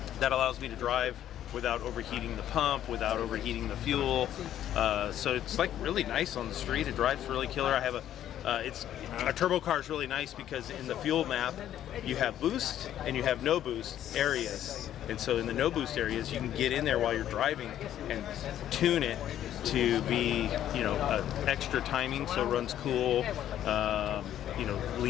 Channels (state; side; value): quieter; right; 11.3 dB